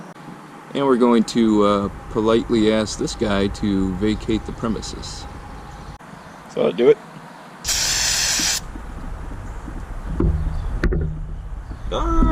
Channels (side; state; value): both; identical; correlation 1.00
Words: And we're going to politely ask this guy to vacate the premises. So I'll do it.